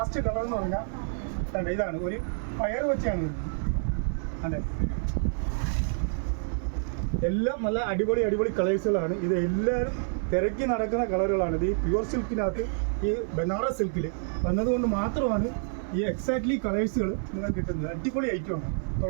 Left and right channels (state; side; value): silent; left; 55 dB below the other